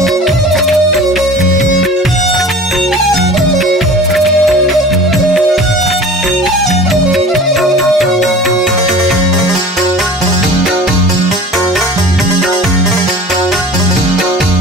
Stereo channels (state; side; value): normal; both; correlation 0.41